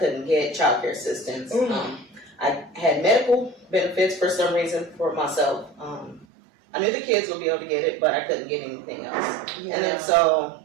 get child care assistance. I had medical benefits for some reason for myself. I knew the kids would be able to get it, but I couldn't get anything else. And then so,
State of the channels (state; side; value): drops out; left; at 6.2 s